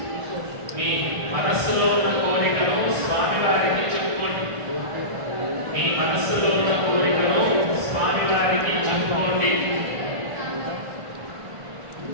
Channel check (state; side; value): late; left; 1.5 ms